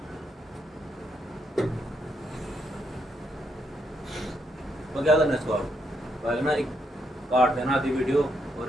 तो क्या करना है इसको, आप पहले ना एक काट देना आधी वीडियो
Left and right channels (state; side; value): normal; both; correlation 0.78